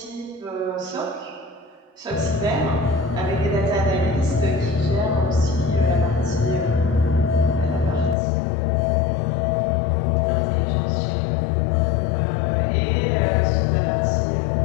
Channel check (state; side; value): drops out; right; at 8.2 s